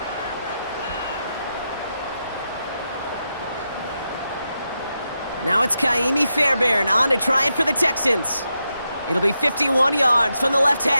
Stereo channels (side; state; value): both; inverted; correlation -0.86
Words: Now it's Kaimi Fairbairn on to try it for the Texans. It'll be 51 yards from the left